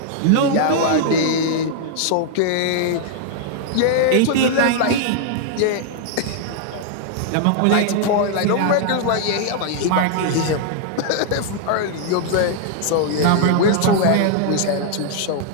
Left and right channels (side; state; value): both; different; correlation -0.01